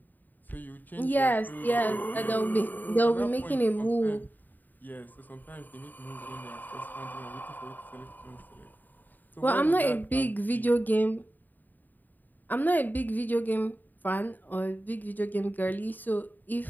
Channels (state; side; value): late; right; 0.087 ms